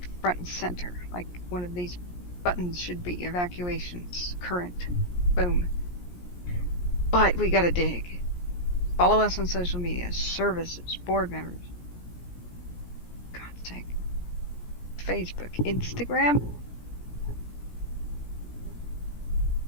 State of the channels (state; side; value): late; right; 17 ms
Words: front and center, like one of these buttons should be. Evacuations, current, boom. But we gotta dig. Follow us on social media, services, board members. God's sake. Facebook, Instagram.